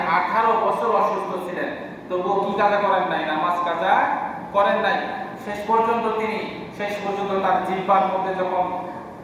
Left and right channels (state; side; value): identical; both; correlation 1.00